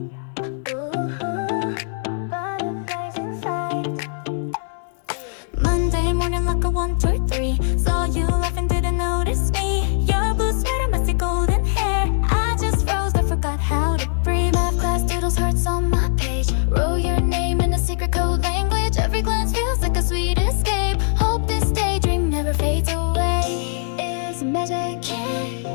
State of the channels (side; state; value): right; silent; digital silence